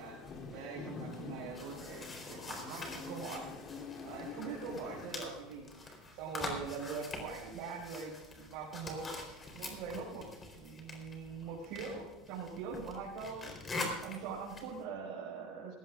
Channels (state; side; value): normal; both; correlation 0.35